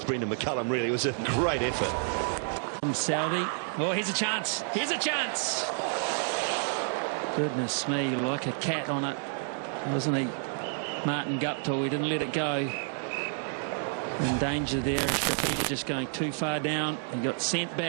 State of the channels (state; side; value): silent; left; 58 dB below the other